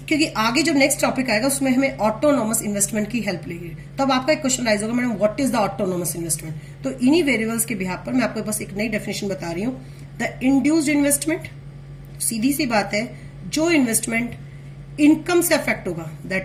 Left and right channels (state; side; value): identical; both; correlation 1.00